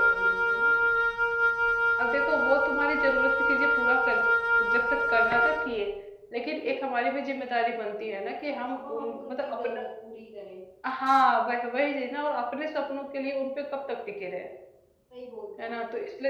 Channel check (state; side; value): identical; both; correlation 1.00